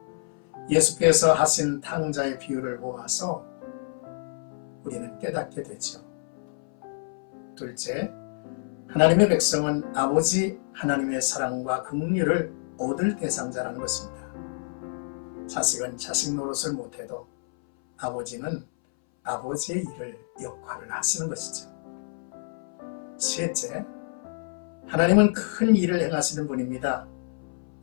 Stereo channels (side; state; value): right; silent; 60 dB below the other